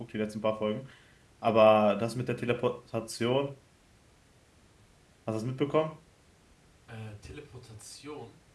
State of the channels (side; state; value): both; identical; correlation 1.00